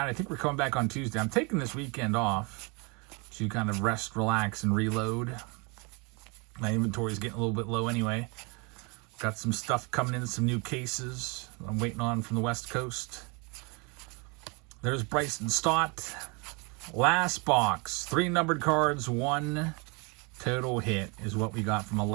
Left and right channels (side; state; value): left; quieter; 31.3 dB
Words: I think we're coming back on Tuesday. I'm taking this weekend off to kind of rest, relax, and reload. My inventory is getting a little bit low anyway. Got some stuff coming in, some new cases I'm waiting on from the West Coast. There's Bryson Stott. Last box. 3 numbered cards, 1 total hit is what we got from